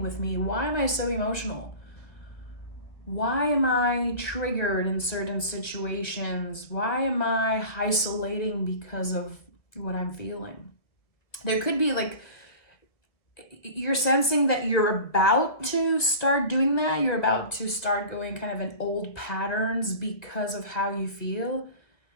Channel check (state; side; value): late; right; 1.9 ms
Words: with me? Why am I so emotional? Why am I triggered in certain situations? Why am I isolating because of what I'm feeling? There could be like, you're sensing that you're about to start doing that. You're about to start going kind of in old patterns because of how you feel.